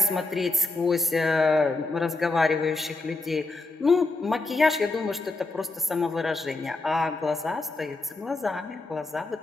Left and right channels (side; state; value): right; quieter; 3.1 dB